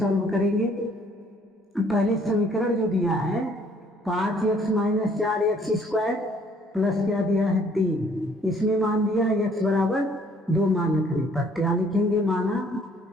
करेंगे। पहले समीकरण जो दिया है 5x minus 4x square plus क्या दिया है 3, इसमें मान दिया है x बराबर 2 मान रखने पर क्या लिखेंगे माना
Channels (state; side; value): normal; both; correlation 0.61